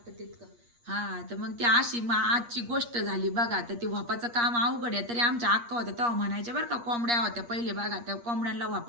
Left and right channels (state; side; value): late; left; 8.5 ms